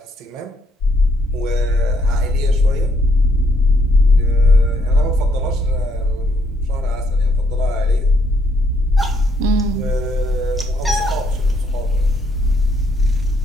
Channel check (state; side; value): normal; both; correlation 0.71